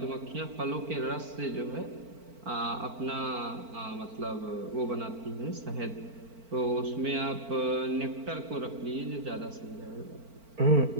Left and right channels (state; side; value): late; left; 4.4 ms